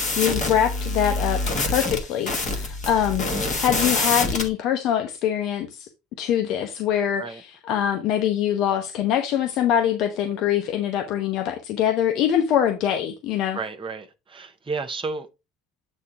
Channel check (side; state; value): right; quieter; 7.4 dB